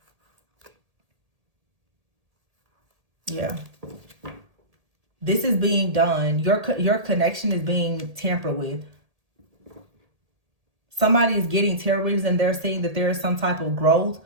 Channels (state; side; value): late; left; 1.8 ms